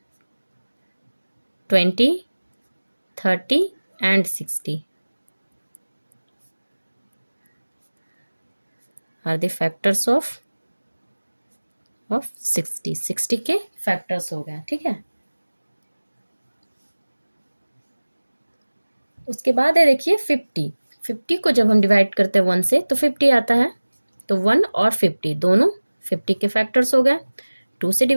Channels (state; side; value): inverted; both; correlation -1.00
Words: 20 30 and 60 are the factors of 60। 60 के फैक्टर्स हो गए, ठीक है। उसके बाद है देखिए 50 को जब हम डिवाइड करते हैं 1 से तो 50 आता है। तो 1 और 50 दोनों 50 के फैक्टर्स हो गए। 2 से